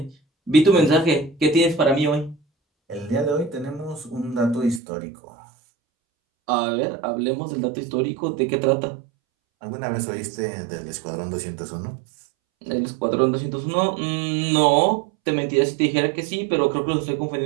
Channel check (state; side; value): drops out; left; at 4.8 s